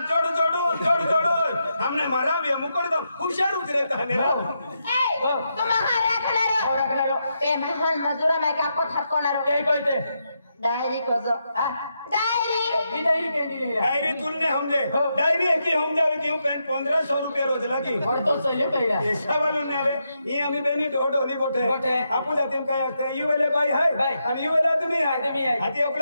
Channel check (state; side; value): inverted; both; correlation -0.83